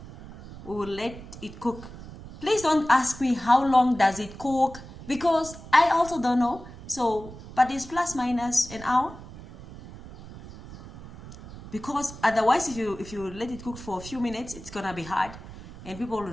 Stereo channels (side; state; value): right; noise; rumble, 15 dB below the sound